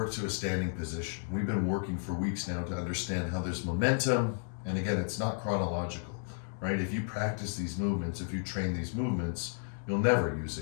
to a standing position. We've been working for weeks now to understand how there's momentum, and again, it's not chronological, right? If you practice these movements, if you train these movements, you'll never use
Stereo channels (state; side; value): silent; right; digital silence